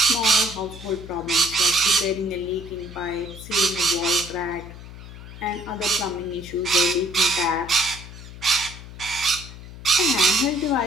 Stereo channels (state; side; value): noise; left; hum, 14 dB below the sound